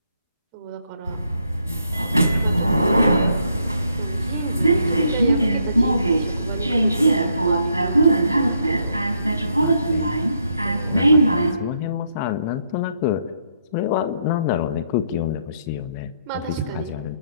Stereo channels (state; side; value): inverted; both; correlation -0.75